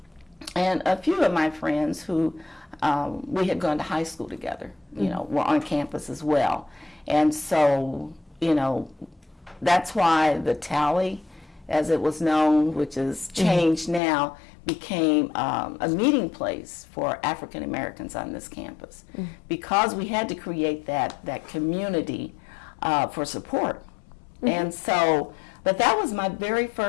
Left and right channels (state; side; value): drops out; right; at 14.0 s